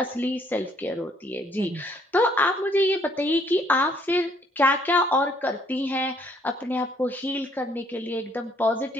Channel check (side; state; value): both; normal; correlation 0.65